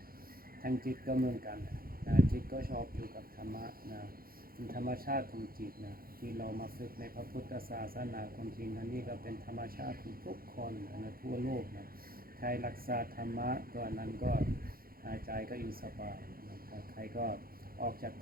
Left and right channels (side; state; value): left; late; 0.43 ms